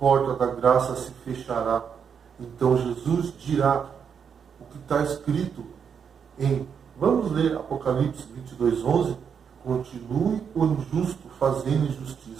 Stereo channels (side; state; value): left; quieter; 7.1 dB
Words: da graça se fechará. Então Jesus dirá o que está escrito vamos ler Apocalipse 22:11. Continue o injusto fazendo